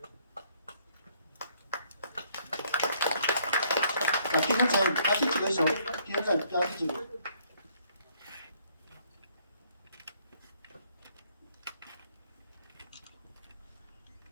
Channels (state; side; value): inverted; both; correlation -0.66